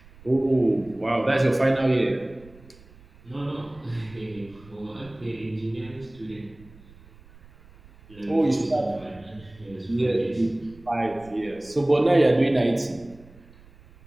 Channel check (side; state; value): right; noise; rumble, 24 dB below the sound